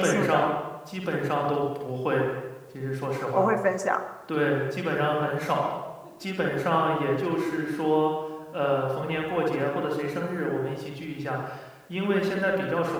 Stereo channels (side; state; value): both; identical; correlation 1.00